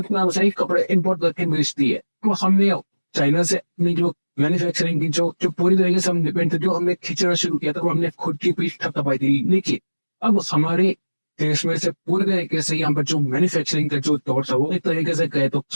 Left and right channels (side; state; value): both; inverted; correlation -1.00